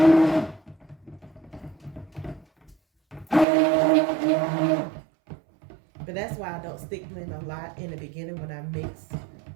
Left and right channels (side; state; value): left; drops out; at 3.5 s